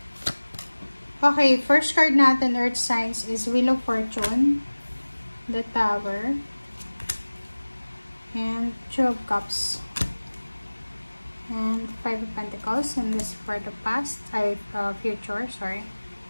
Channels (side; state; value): both; inverted; correlation -1.00